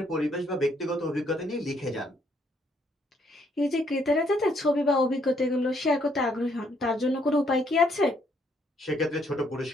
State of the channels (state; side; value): normal; both; correlation 0.70